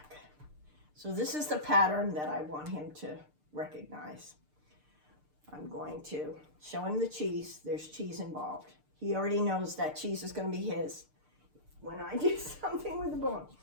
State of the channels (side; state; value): left; late; 6.7 ms